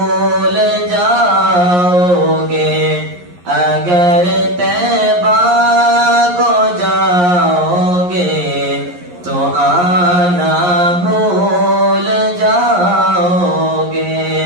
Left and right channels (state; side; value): late; left; 11 ms